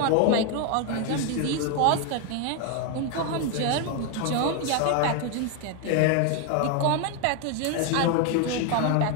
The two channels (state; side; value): different; both; correlation 0.01